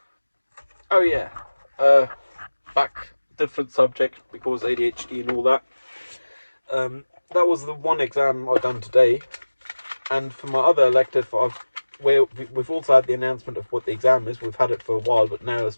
Oh yeah, back different subject because ADHD and all that. That was the one exam I've done today, and for my other elective, we've also had the announcement of what the exam is. We've had it for a while, but now it's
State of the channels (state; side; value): inverted; both; correlation -1.00